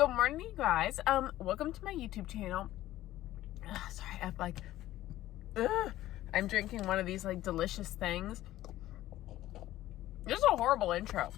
morning, you guys. Welcome to my YouTube channel. Sorry, I'm drinking one of these like delicious things. This is a horrible intro.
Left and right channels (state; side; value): quieter; right; 14.8 dB